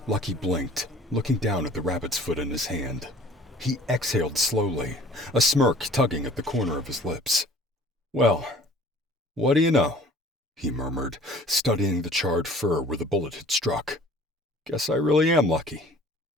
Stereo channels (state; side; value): normal; both; correlation 0.50